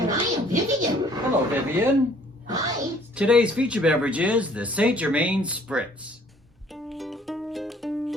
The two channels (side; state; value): both; normal; correlation 0.58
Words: I am Vivian. Hello, Vivian. Hi. Today's feature beverage is the St Germaine Spritz.